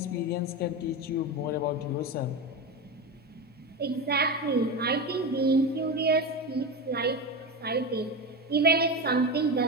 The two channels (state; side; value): normal; both; correlation 0.20